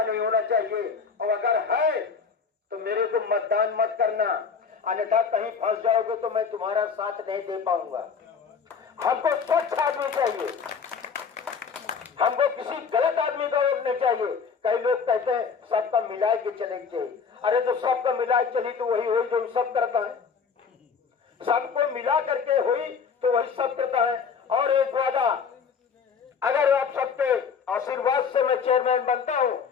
नहीं होना चाहिए, और अगर है तो मेरे को मतदान मत करना, अन्यथा कहीं फंस जाओगे तो मैं तुम्हारा साथ नहीं दे पाऊंगा। हमको स्वच्छ आदमी चाहिए, हमको किसी गलत आदमी का वोट नहीं चाहिए। कई लोग कहते हैं सबका मिला के चलेंगे चाहिए। अरे तो सबका मिला चली तो वही हुई जो सब करता है, सबको मिला करके हुई तो वही सब करता है। और एक वादा, अगर आप सबके आशीर्वाद से मैं चेयरमैन बनता हूं,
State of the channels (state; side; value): quieter; right; 5.9 dB